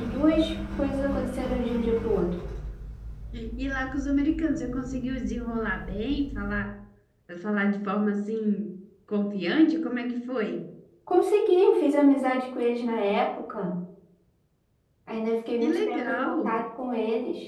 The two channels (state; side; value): identical; both; correlation 1.00